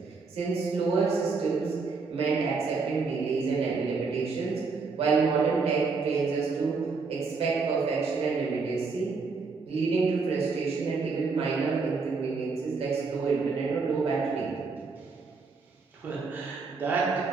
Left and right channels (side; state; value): left; quieter; 4.5 dB